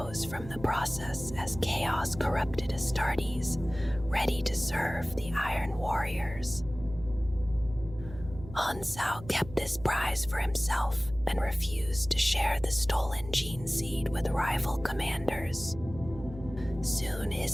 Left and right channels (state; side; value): noise; right; hum, 14 dB below the sound